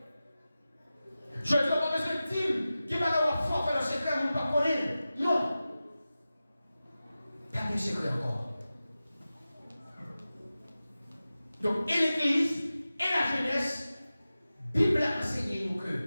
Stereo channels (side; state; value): both; inverted; correlation -0.95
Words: Je ne dis pas parce que Tim, qui va avoir fort faire le secret, vous ne pas connaître. Non. Pas de secret encore. Donc, et l'église, et la jeunesse, Bible a enseigné nous que